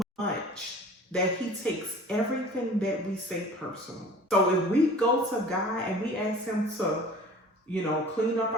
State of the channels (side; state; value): both; normal; correlation 0.44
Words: much that he takes everything that we say personal. So if we go to God and we ask him to, you know, clean up